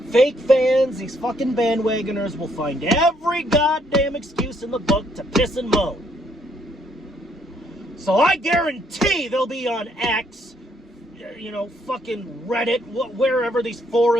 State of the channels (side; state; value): both; normal; correlation 0.70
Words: fake fans, these fucking bandwagoners will find every goddamn excuse in the book to piss and moan. So I guarantee they'll be on X, you know, fucking Reddit, wherever these